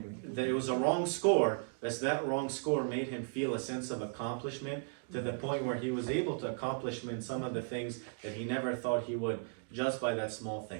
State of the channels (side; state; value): left; silent; 54 dB below the other